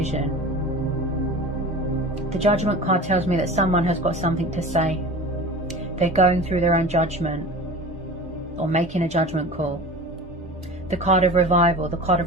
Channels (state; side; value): normal; both; correlation 0.36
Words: The Judgment card tells me that someone has got something to say. They're going through their own judgment or making a judgment call. The card of revival, the card